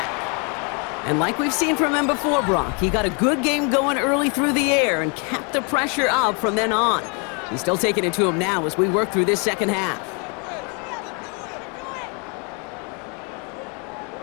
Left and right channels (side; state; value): right; quieter; 35.2 dB